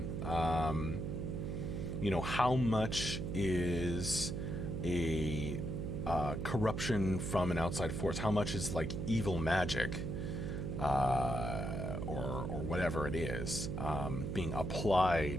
How much is a corruption from an outside force? How much is like evil magic or whatever it is being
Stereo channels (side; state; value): right; noise; hum, 3 dB below the sound